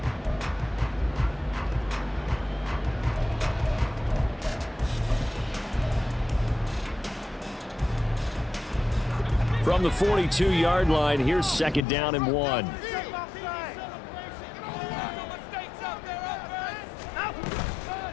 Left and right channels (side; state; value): right; drops out; at 11.9 s